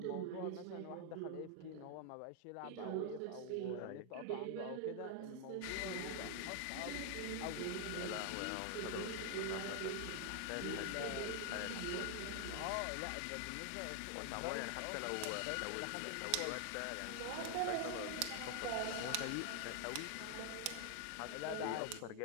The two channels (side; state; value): both; different; correlation 0.00